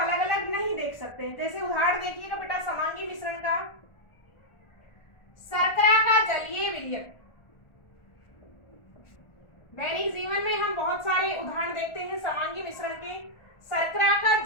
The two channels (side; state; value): right; late; 1.4 ms